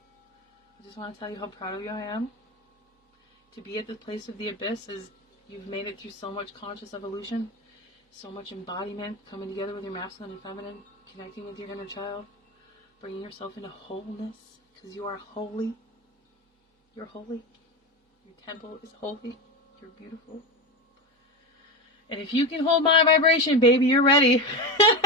I just want to tell you how proud of you I am. To be at the place of the abyss is you've made it through so much conscious evolution, so much embodiment, coming together with your masculine and feminine, connecting with your inner child, bringing yourself into wholeness, because you are holy. You're holy. Your temple is holy. You're beautiful. And if you can hold my vibration, baby, you're ready.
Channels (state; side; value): normal; both; correlation 0.19